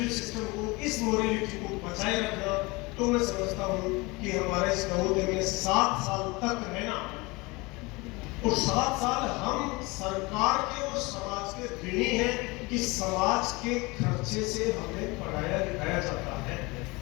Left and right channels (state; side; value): quieter; right; 24.7 dB